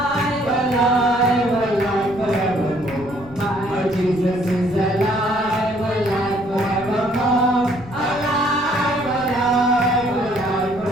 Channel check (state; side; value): noise; left; rumble, 19 dB below the sound